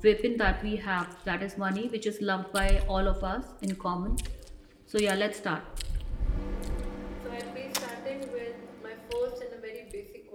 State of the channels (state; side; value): identical; both; correlation 1.00